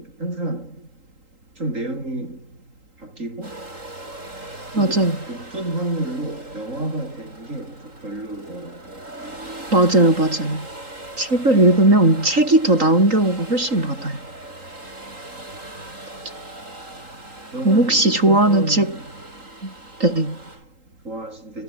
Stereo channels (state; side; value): late; left; 3.8 ms